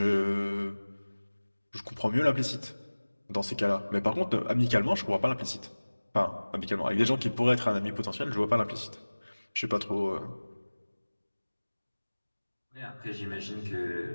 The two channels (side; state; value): both; inverted; correlation -1.00